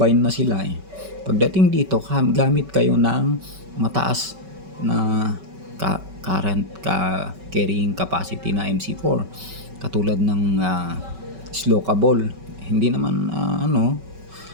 na sila pagdating dito, gamit kayo ng mataas na current carrying capacity na MC4, katulad ng Slokable. Hindi naman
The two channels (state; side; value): late; left; 5.2 ms